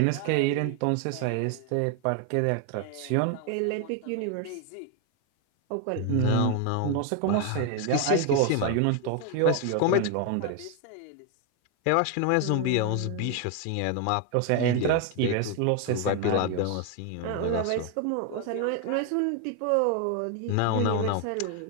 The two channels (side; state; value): both; different; correlation 0.01